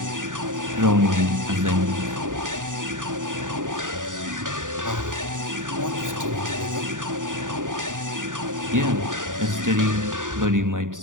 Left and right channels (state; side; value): late; left; 0.88 ms